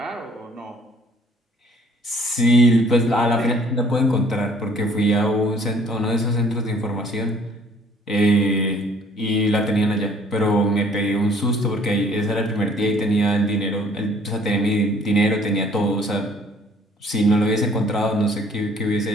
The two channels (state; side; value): normal; both; correlation 0.58